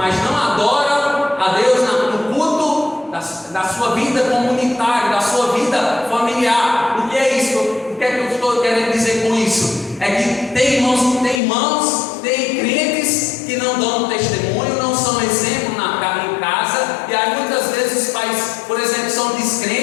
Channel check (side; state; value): right; drops out; at 11.4 s